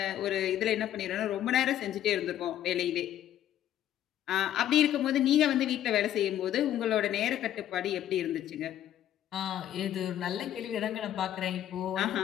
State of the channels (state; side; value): quieter; right; 11.6 dB